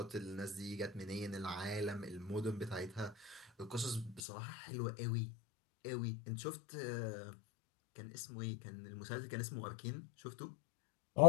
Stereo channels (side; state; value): right; drops out; at 4.2 s